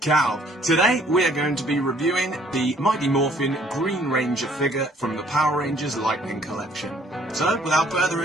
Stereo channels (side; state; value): both; normal; correlation 0.60